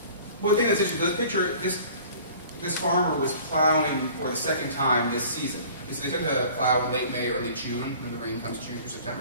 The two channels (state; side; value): inverted; both; correlation -0.47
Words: One thing that's interesting, this picture, this farmer was plowing for the second time this season. So they tend to plow in late May, early June, when the rain comes June through